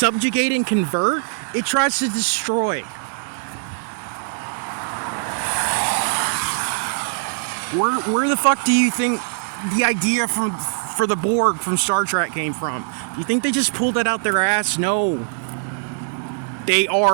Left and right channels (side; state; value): left; silent; digital silence